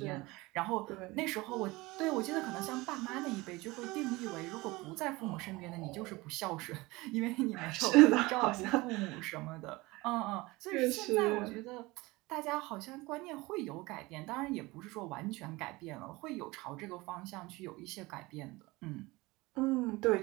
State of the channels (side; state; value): left; quieter; 21.9 dB